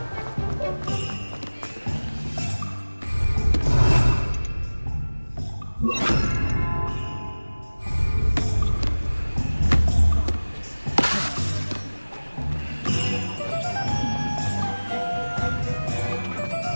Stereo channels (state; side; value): inverted; both; correlation -1.00